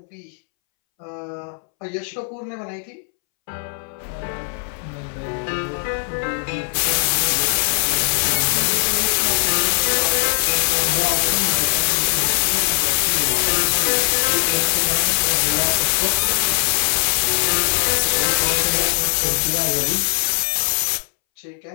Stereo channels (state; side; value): silent; right; 66 dB below the other